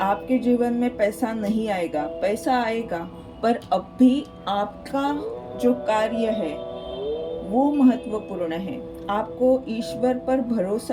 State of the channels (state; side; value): identical; both; correlation 1.00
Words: आपके जीवन में पैसा नहीं आएगा, पैसा आएगा, पर अब भी आपका जो कार्य है वो महत्वपूर्ण है। आपको ईश्वर पर